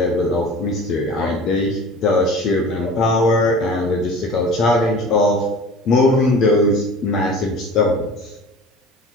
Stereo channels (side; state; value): both; normal; correlation 0.40